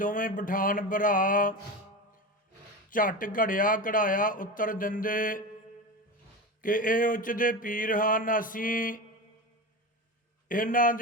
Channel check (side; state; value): both; normal; correlation 0.25